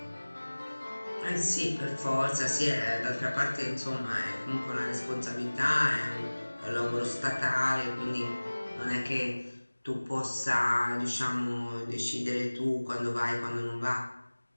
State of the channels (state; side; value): inverted; both; correlation -1.00